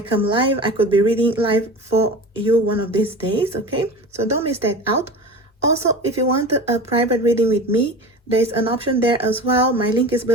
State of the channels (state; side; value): normal; both; correlation 0.33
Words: live. I could be reading live for you one of these days, okay? So don't miss that out. Also, if you want a private reading with me, there's an option there as well. My link is